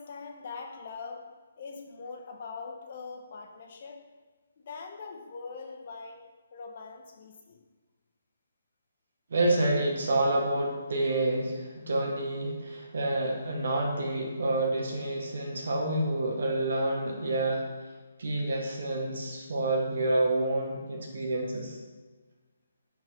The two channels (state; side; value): inverted; both; correlation -0.75